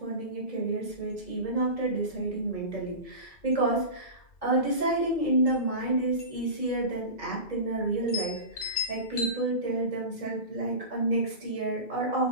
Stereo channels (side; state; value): right; late; 2.0 ms